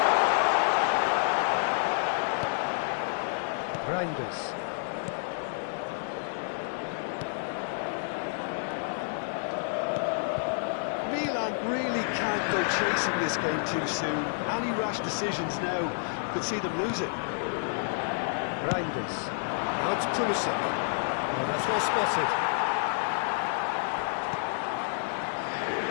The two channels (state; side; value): silent; right; digital silence